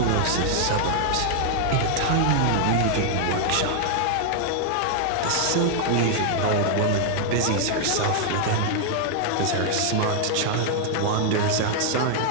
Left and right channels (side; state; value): both; different; correlation 0.00